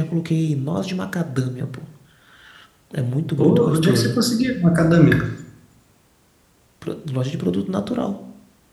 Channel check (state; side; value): identical; both; correlation 1.00